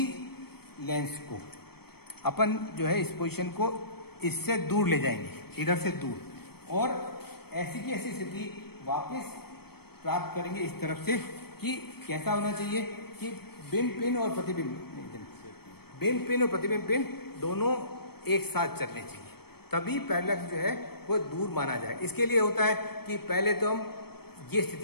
लेंस को अपन जो है इस पोजीशन को इससे दूर ले जाएंगे, इधर से दूर, और ऐसी की ऐसी स्थिति वापस प्राप्त करेंगे इस तरफ से कि कैसा होना चाहिए कि बिंब पिन और प्रतिबिंब पिन दोनों एक साथ चलने चाहिए, तभी पैरेलक्स जो है वो दूर माना जाए। इसके लिए होता है कि पहले तो हम ये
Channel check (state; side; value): late; right; 0.96 ms